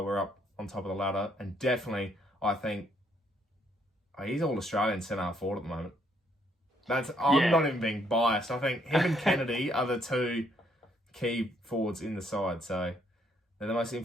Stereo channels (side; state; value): both; normal; correlation 0.70